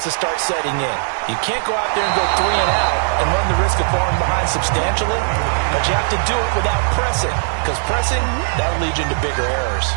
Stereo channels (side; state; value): left; silent; 65 dB below the other